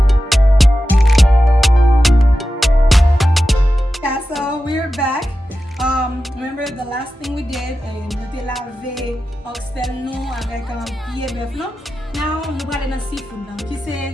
Yeah, so we're back. Remember the last thing we did, nous lavé oxtail nous avec pied bœuf non. Now nous allons dans seafood là, qui c'est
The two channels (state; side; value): normal; both; correlation 0.92